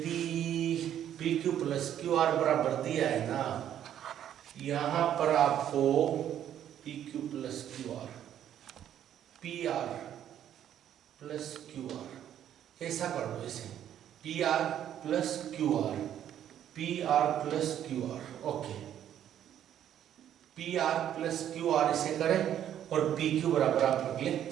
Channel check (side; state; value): left; quieter; 10.5 dB